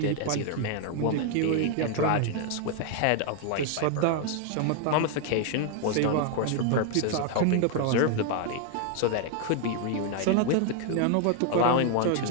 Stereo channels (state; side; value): different; both; correlation 0.00